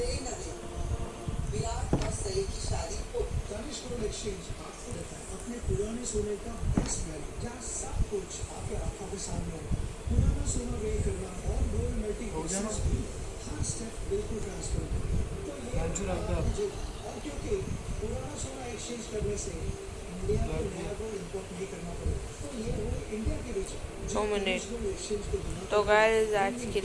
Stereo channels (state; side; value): identical; both; correlation 1.00